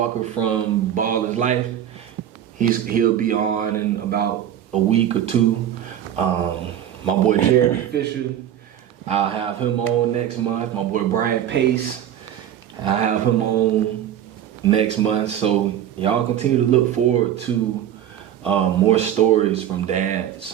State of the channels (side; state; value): left; quieter; 10.6 dB